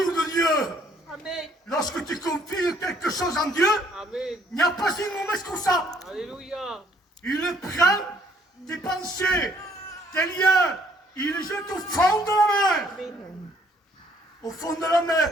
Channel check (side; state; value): both; normal; correlation 0.64